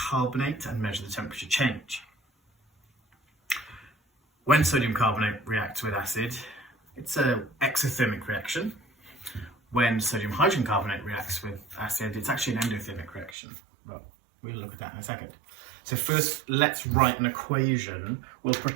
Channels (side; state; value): left; drops out; at 13.4 s